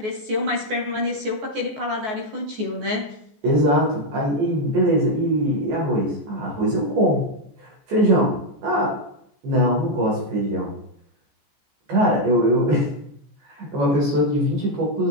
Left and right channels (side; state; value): left; late; 14 ms